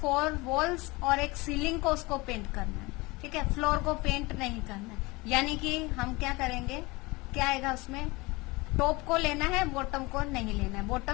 वॉल्स और एक सीलिंग को उसको पेंट करना है। ठीक है, फ्लोर को पेंट नहीं करना है। यानी कि हम क्या करेंगे, क्या आएगा उसमें, टॉप को लेना है, बॉटम को नहीं लेना है।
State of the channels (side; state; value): right; quieter; 23.6 dB